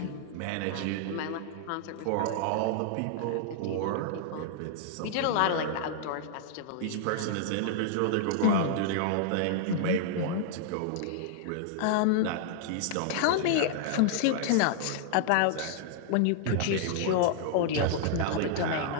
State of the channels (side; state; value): both; different; correlation -0.01